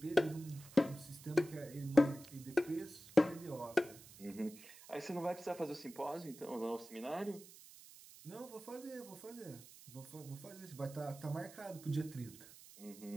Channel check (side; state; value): right; noise; hiss, 18 dB below the sound